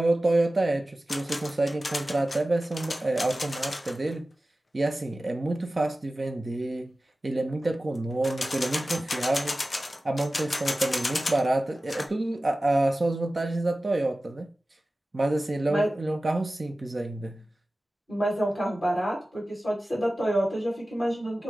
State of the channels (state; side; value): normal; both; correlation 0.96